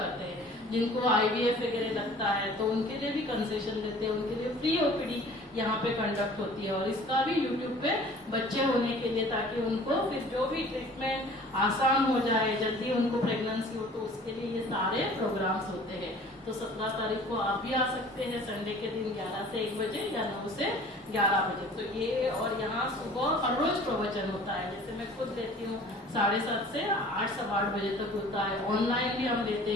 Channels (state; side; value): normal; both; correlation 0.48